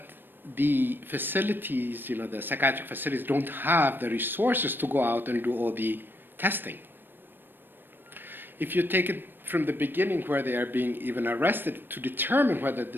the facilities, the psychiatric facilities don't have the resources to go out and do all the testing. If you take it from the beginning where they are being even arrested to determine whether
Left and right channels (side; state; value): left; late; 0.095 ms